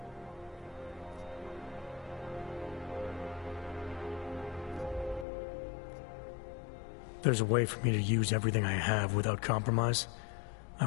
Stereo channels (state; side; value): drops out; right; at 5.2 s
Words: There's a way for me to use everything I have without compromise. I